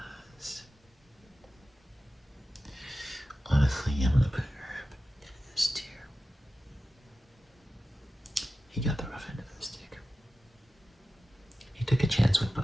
Honestly, I'm gonna put Herb in this tier. He got the rough end of the stick. He took a chance with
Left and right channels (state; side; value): normal; both; correlation 0.94